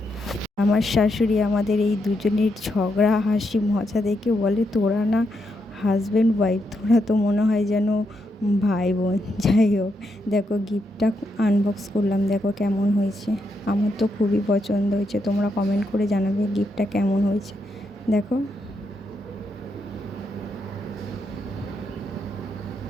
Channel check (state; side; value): normal; both; correlation 0.81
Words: আমার শাশুড়ি আমাদের এই দুজনের ঝগড়া হাসি মজা দেখে বলে, তোরা না হাজব্যান্ড ওয়াইফ, তোরা তো মনে হয় যেন ভাই বোন। যাই হোক, দেখো গিফটটা আনবক্স করলাম, দেখো কেমন হয়েছে। আমার তো খুবই পছন্দ হয়েছে, তোমরা কমেন্ট করে জানাবে গিফটটা কেমন হয়েছে। দেখো।